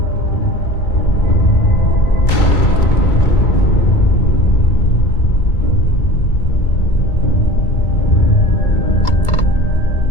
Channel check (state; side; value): late; right; 2.2 ms